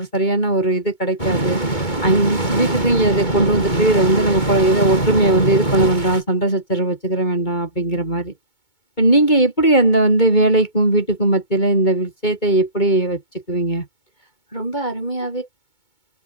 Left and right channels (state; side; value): late; right; 2.2 ms